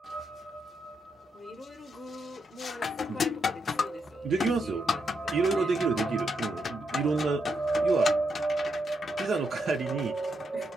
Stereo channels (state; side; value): normal; both; correlation 0.81